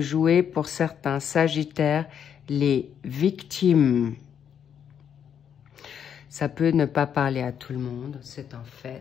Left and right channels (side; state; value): right; quieter; 8.4 dB